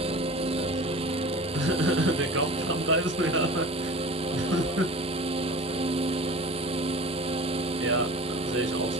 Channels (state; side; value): normal; both; correlation 0.38